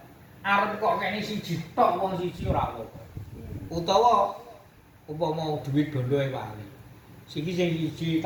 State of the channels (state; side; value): identical; both; correlation 1.00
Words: Arep kok kene siji tok wong siji ora apa. Utawa umpama duit bondo e wali. Sing siji